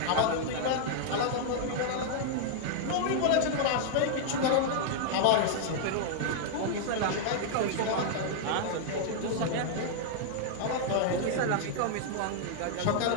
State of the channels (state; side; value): different; both; correlation -0.01